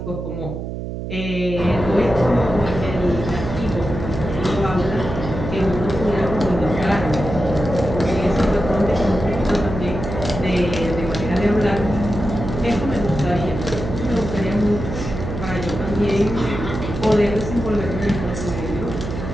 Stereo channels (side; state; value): right; noise; hum, 6 dB below the sound